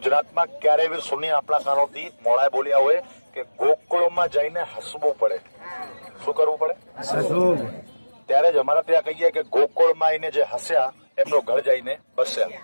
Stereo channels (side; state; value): both; inverted; correlation -1.00